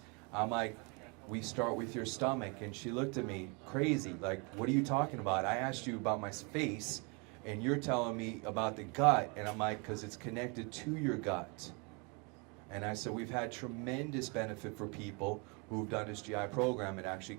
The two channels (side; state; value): left; quieter; 32.1 dB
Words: I'm like, we start with your stomach. And she looked at me crazy, like, what are you talking about? I asked you about my face, and you're telling me about the gut. And I'm like, because it's connected to your gut. And I said, we've had tremendous benefit for people who've done this GI program and actually